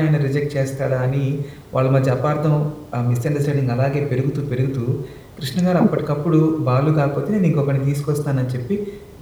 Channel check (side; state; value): both; identical; correlation 1.00